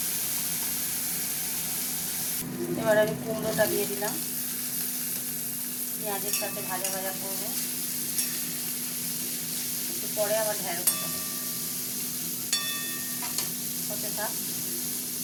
এবার আমি কুমড়োটা দিয়ে দিলাম, পেঁয়াজের সাথে ভাজা ভাজা করবো। একটু পরে আবার ঢ্যাঁড়সটা হতে থাক।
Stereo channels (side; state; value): both; identical; correlation 1.00